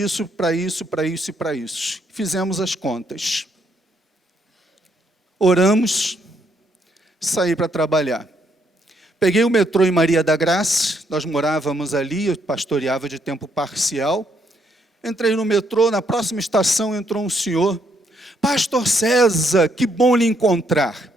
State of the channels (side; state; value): both; normal; correlation 0.73